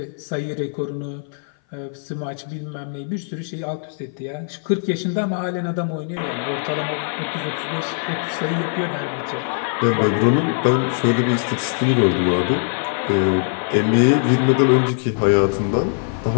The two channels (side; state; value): right; silent; 58 dB below the other